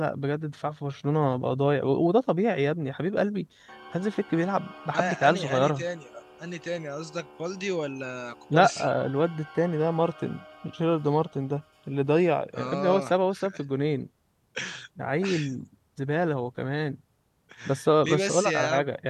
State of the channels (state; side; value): identical; both; correlation 1.00